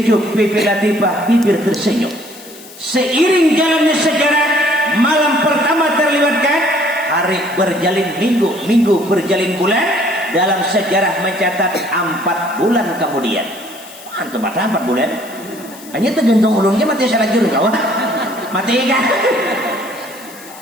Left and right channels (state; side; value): noise; left; hiss, 19 dB below the sound